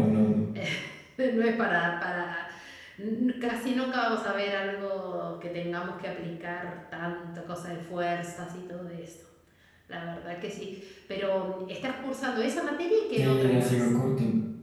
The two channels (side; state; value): both; identical; correlation 1.00